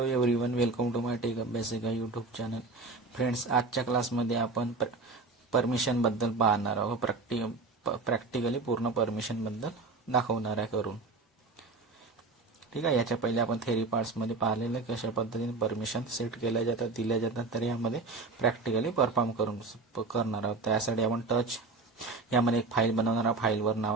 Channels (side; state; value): left; quieter; 3.7 dB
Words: everyone, welcome to my tech Abhyasika YouTube channel. Friends, आजच्या क्लासमध्ये आपण परमिशनबद्दल पाहणार आहोत. प्रॅक्टिकली पूर्ण परमिशनबद्दल दाखवणार आहे करून. ठीक आहे. याच्या पहिले आपण थेरी पार्ट्समध्ये पाहिलेलं कशा पद्धतीने परमिशन सेट केल्या जातात, दिल्या जातात, तर यामध्ये प्रॅक्टिकली परफॉर्म करणार आहोत. त्यासाठी आपण यामध्ये एक फाईल बनवणार आहोत. फाईल